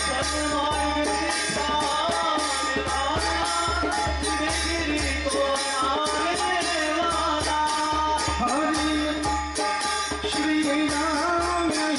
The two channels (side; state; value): both; identical; correlation 1.00